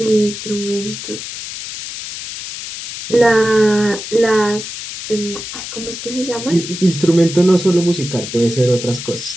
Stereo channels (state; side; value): noise; left; hiss, 9 dB below the sound